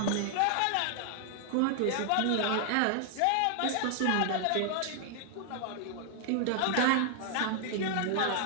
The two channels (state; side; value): different; both; correlation 0.00